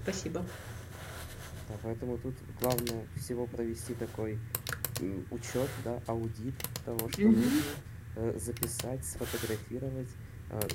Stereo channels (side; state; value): right; noise; hum, 27 dB below the sound